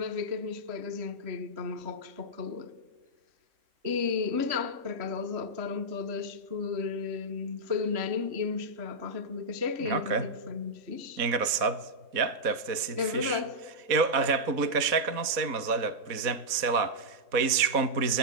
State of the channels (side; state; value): left; late; 4.1 ms